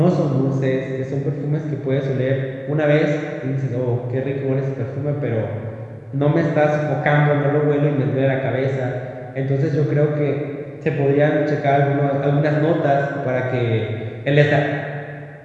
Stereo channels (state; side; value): identical; both; correlation 1.00